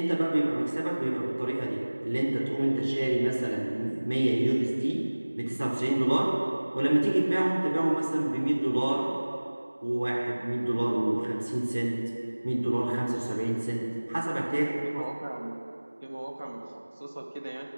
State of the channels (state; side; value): inverted; both; correlation -1.00